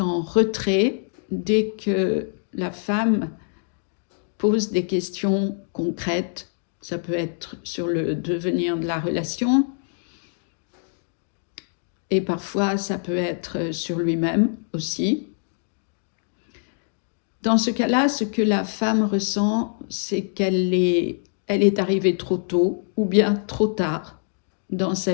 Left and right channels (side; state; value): right; silent; digital silence